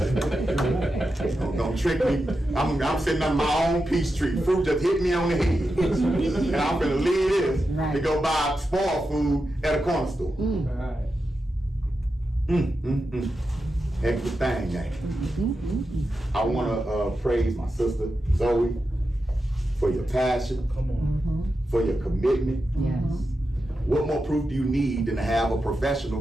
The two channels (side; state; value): both; normal; correlation 0.89